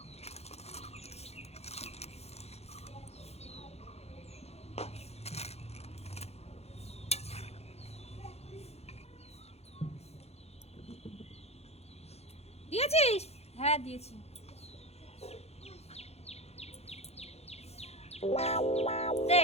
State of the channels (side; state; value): right; late; 0.30 ms